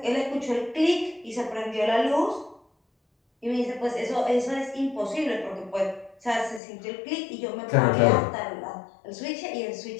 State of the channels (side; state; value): right; drops out; at 6.6 s